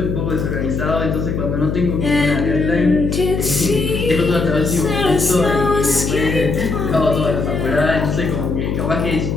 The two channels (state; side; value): noise; left; hum, 2 dB below the sound